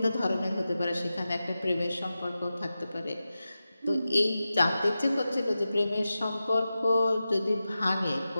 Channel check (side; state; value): both; inverted; correlation -0.93